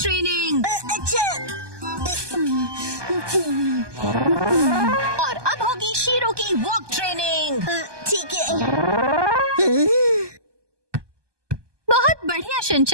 अच्छा। और अब होगी शीरो की वॉक ट्रेनिंग। ठीक है। बहुत बढ़िया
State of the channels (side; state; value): left; late; 1.2 ms